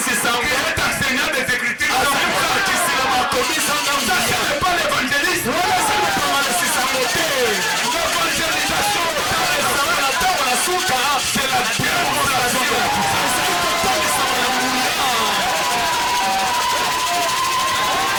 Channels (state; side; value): identical; both; correlation 1.00